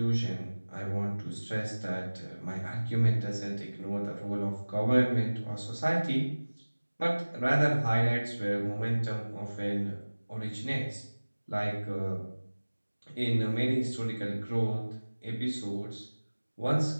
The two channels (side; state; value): both; inverted; correlation -1.00